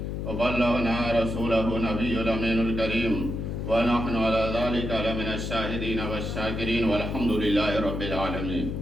وبلغنا رسولہ نبی الامین الکریم ونحن علی ذلک لمن الشاہدین والشاکرین والحمد للہ رب العالمین۔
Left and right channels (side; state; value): left; noise; hum, 4 dB below the sound